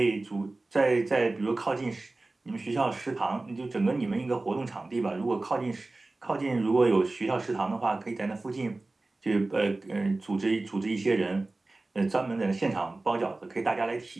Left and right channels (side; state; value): left; quieter; 3.1 dB